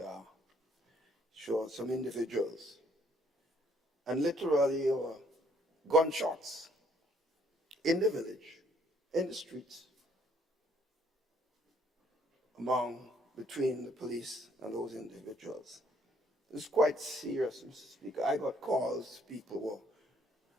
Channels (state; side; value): normal; both; correlation 0.65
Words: are. Sure, some individuals. And literally gunshots in the village, in the streets, between the police and those individuals. It's quite serious, Mr. Speaker. I got calls, people